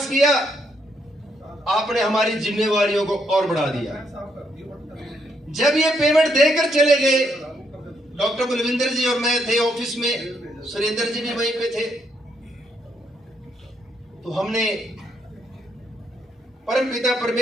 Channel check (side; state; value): both; normal; correlation 0.75